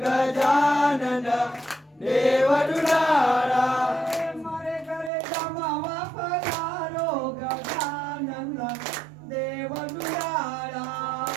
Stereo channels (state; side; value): drops out; left; at 5.1 s